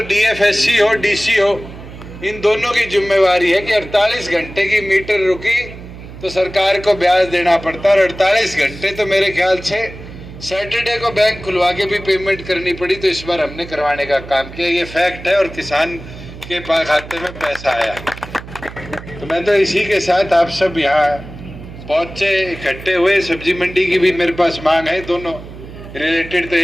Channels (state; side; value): noise; right; hum, 14 dB below the sound